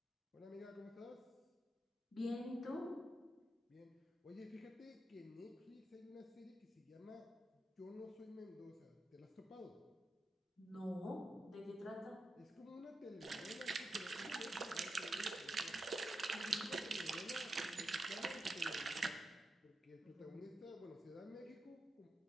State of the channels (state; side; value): normal; both; correlation 0.87